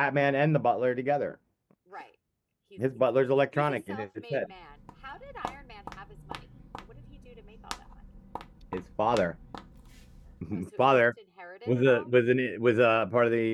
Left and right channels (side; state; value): both; identical; correlation 1.00